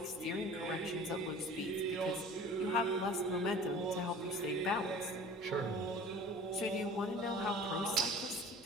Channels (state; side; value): normal; both; correlation 0.43